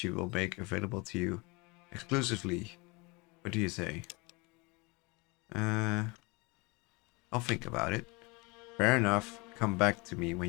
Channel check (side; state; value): right; quieter; 26.9 dB